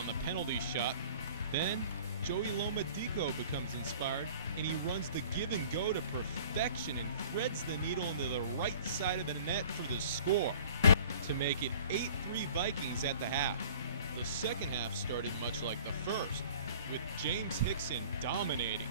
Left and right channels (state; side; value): inverted; both; correlation -0.49